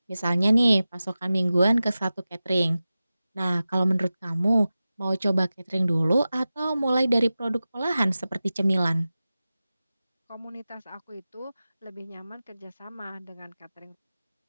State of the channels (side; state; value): both; inverted; correlation -0.95